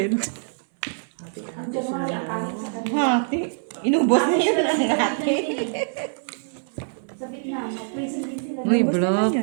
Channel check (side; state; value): left; silent; 62 dB below the other